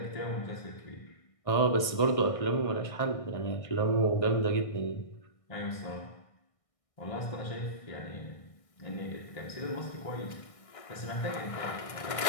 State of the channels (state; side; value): late; right; 1.6 ms